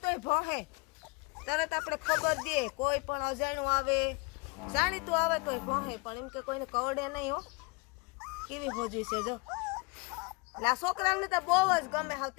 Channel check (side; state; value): right; quieter; 28.5 dB